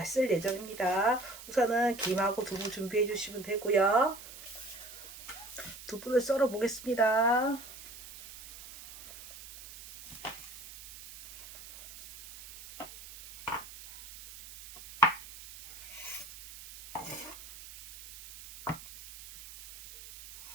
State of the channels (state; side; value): noise; right; hiss, 15 dB below the sound